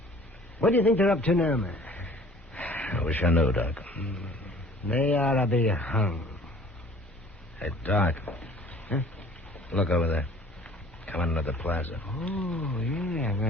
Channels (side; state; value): both; normal; correlation 0.50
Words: What do you think they're up to now, man? I wish I knew, Doc. They ought to be hung. Hey, Doc. Huh? Look over there. Coming into the plaza. Oh, yeah,